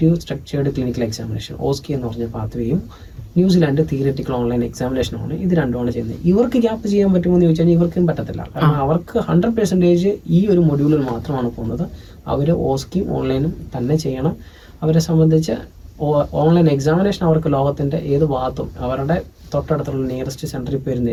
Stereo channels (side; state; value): both; identical; correlation 1.00